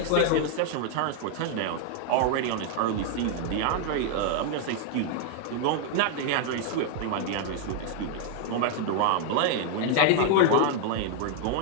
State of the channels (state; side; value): different; both; correlation 0.00